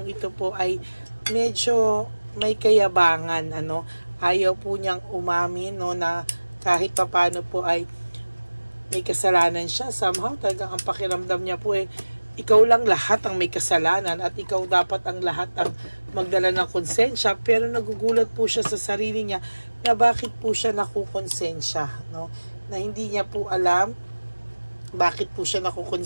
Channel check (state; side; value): inverted; both; correlation -1.00